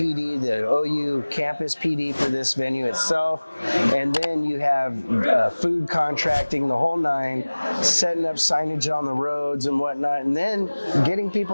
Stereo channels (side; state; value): both; inverted; correlation -1.00